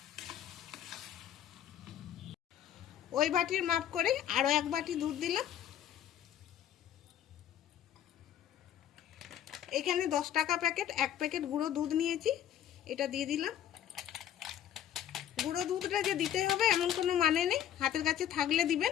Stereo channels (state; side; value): quieter; right; 10.6 dB